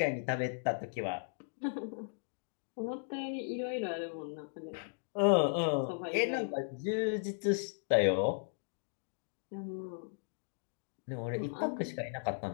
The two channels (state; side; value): silent; right; digital silence